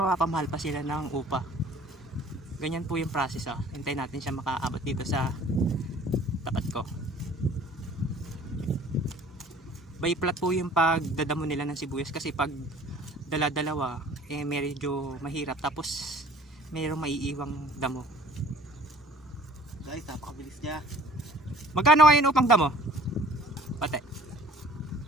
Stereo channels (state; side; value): normal; both; correlation 0.51